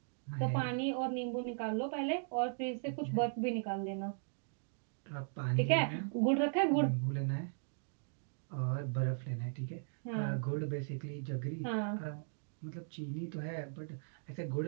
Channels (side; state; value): left; silent; digital silence